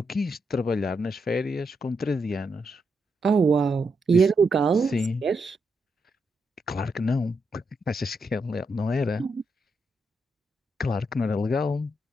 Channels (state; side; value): normal; both; correlation 0.82